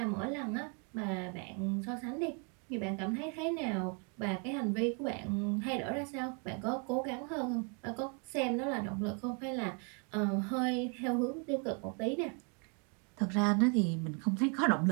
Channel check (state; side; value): quieter; left; 37.3 dB